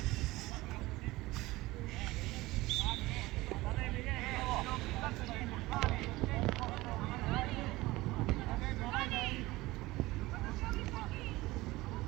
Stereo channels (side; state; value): left; quieter; 19.6 dB